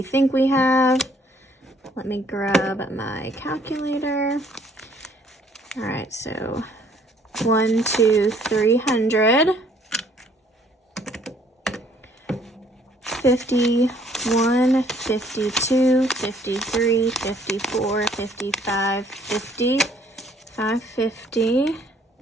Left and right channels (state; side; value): normal; both; correlation 0.62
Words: think we have. Let me grab my calculator. All right, so 1, 2, 300. 51, 52, 53, 54, 55, 50, 550,